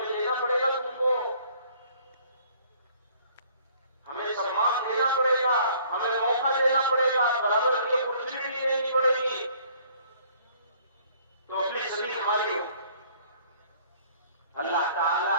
لینا پڑے گا، تم کو ہمیں سمان دینا پڑے گا، ہمیں موقع دینا پڑے گا، برابر کی اپرچونٹی دینی پڑے گی، تو اپنی صدی ہماری ہو. اللہ تعالی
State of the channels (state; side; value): inverted; both; correlation -0.58